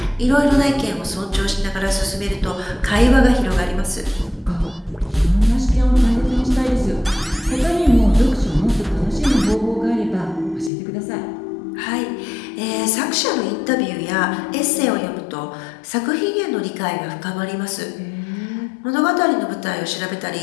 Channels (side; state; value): right; drops out; at 10.7 s